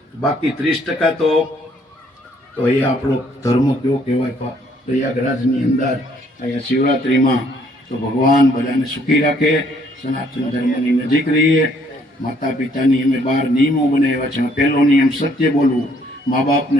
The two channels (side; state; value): both; normal; correlation 0.65